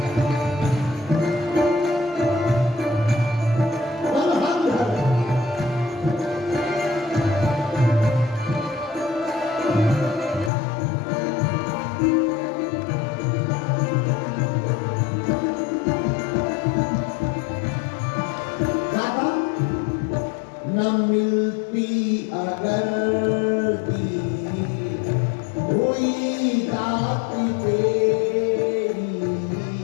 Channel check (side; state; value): right; drops out; at 10.5 s